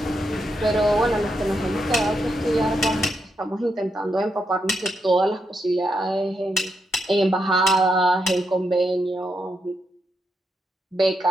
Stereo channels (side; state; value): both; normal; correlation 0.82